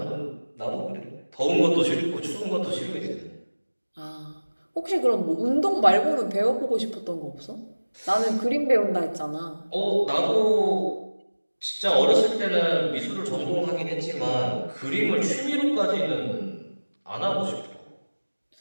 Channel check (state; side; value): inverted; both; correlation -1.00